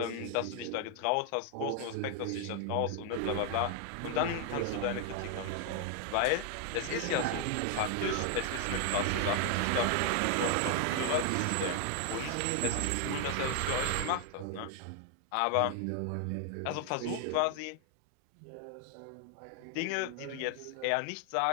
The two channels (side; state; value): both; different; correlation 0.00